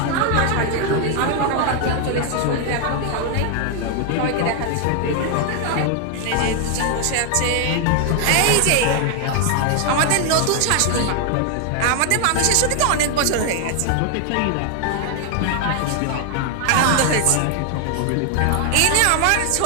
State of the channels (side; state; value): both; different; correlation 0.00